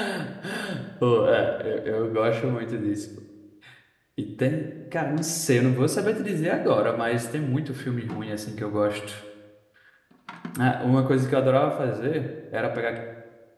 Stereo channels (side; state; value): both; identical; correlation 1.00